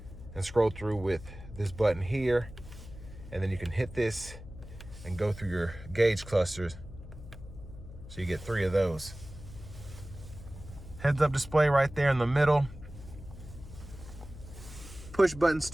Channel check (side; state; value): left; noise; hum, 15 dB below the sound